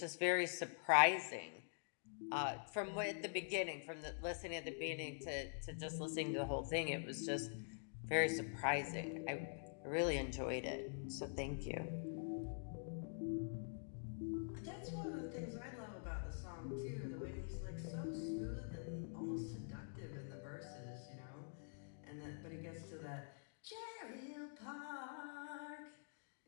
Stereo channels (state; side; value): silent; right; digital silence